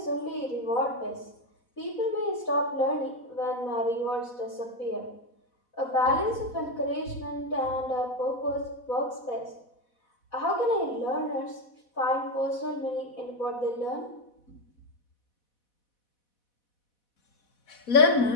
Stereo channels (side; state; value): right; late; 4.1 ms